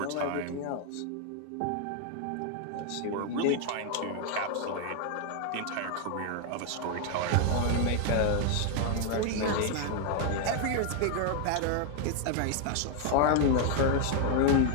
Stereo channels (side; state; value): both; different; correlation 0.00